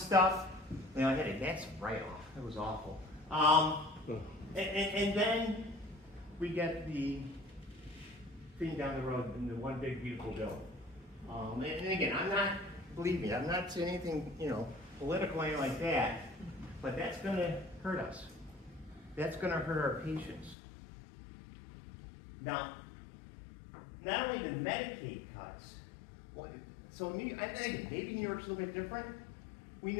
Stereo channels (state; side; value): drops out; right; at 20.6 s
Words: I had a that's write-off. It was awful. And then we get the thing down the road in the one big beautiful bill. And again, believe me, I'm not saying anything political or anything like that, but that's going to hurt us. That's going to hurt our patients. Now, not only the Medicaid cuts, so I think maybe New York's a little bit different. We